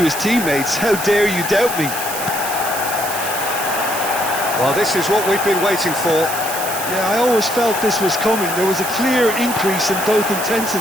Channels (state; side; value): noise; right; hiss, 6 dB below the sound